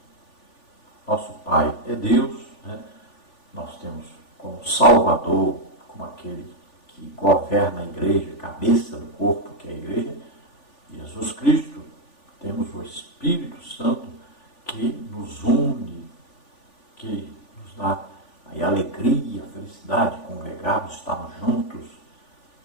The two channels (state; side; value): late; right; 3.4 ms